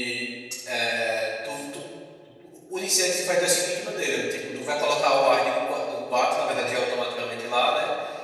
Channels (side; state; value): both; identical; correlation 1.00